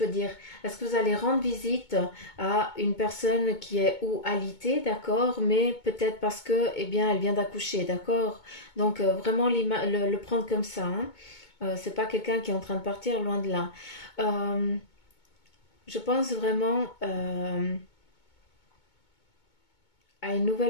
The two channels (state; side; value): late; right; 2.2 ms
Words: dire, est-ce que vous allez rendre visite à une personne qui est ou alitée, d'accord, mais peut-être parce que, eh bien, elle vient d'accoucher, d'accord. Donc, vraiment le prendre comme ça, hein. C'est pas quelqu'un qui est en train de partir, loin de là. Euh, je pense vraiment à une